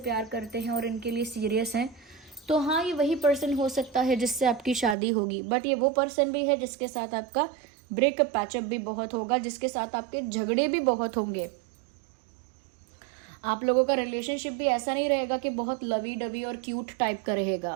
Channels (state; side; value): drops out; left; at 5.0 s